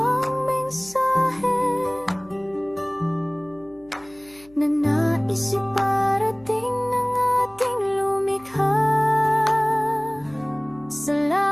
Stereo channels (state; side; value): noise; left; hum, 27 dB below the sound